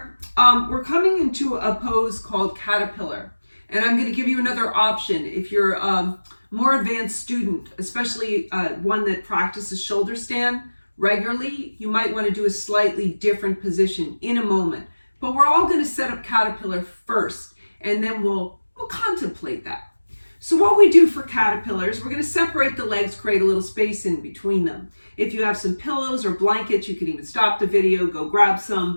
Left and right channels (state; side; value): inverted; both; correlation -1.00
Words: we're coming into a pose called caterpillar. And I'm going to give you another option. If you're a more advanced student, especially one that practices shoulder stand regularly, you might want to do a slightly different position in a moment. But we're all going to set up caterpillar first, and then we'll contemplate that. So what we do for caterpillars, we're going to separate the legs, create a little space in between them. If you have some pillows or blankets, you can even stop the video, go grab